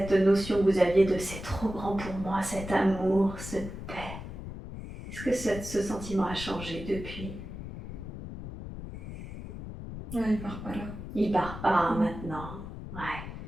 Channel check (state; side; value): noise; left; rumble, 10 dB below the sound